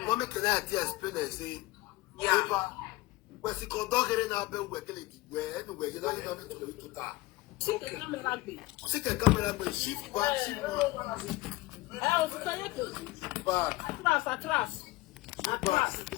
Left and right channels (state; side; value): quieter; right; 19.4 dB